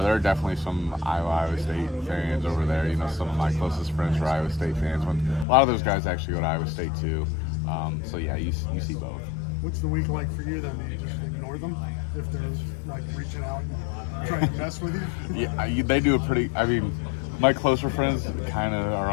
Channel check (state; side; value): drops out; right; at 5.5 s